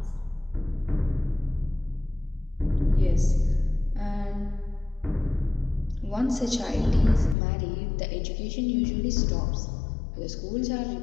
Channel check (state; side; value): drops out; right; at 7.4 s